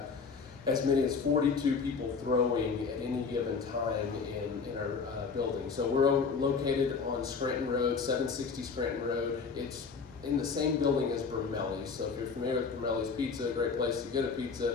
as many as 42 people throwing at any given time in our building. So we're located on Scranton Road, 760 Scranton Road. It's in the same building as Brumelli's. So if you're familiar with Brumelli's Pizza, a great place to get a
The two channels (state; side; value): quieter; right; 5.2 dB